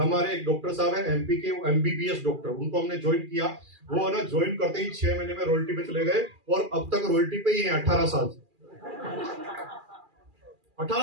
एक डॉक्टर साहब है एमपी के, एमबीबीएस डॉक्टर, उनको हमने ज्वाइन किया। वो ना ज्वाइन करते ही 6 महीने में रॉयल्टी पे चले गए और अब तक रॉयल्टी पे ही है। 18 साल से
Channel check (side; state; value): left; late; 2.4 ms